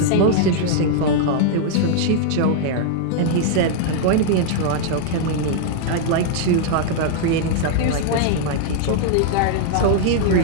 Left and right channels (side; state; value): both; different; correlation 0.00